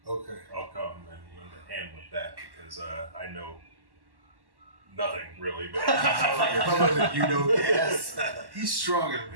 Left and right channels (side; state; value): left; late; 1.1 ms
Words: Okay. I'll come and lend a hand with that because I know nothing really. But You know, yes. He's stronger